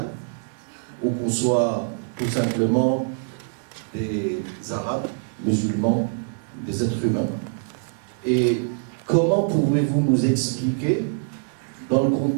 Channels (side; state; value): left; silent; 58 dB below the other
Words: ou qu'on soit tout simplement des Arabes, musulmans, des êtres humains. Et comment pouvez-vous nous expliquer, dans le